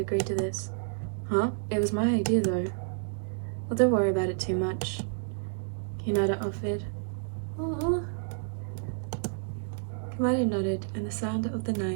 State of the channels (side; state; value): left; silent; digital silence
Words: to this. Huh? It was my idea, though. Well, don't worry about it too much. Hinata offered. Aww. Komaeda nodded, and the sound of the